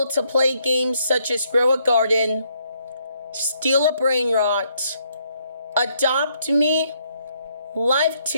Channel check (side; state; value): both; inverted; correlation -0.72